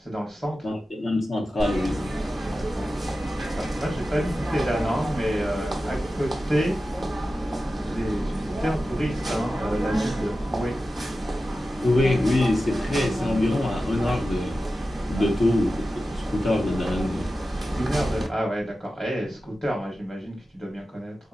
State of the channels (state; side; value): normal; both; correlation 0.93